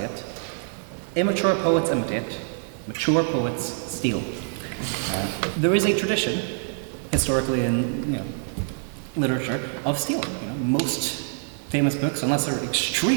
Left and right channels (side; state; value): left; silent; digital silence